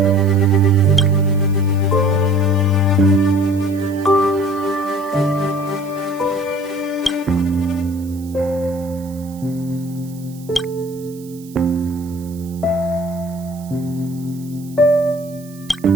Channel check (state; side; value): noise; right; hiss, 23 dB below the sound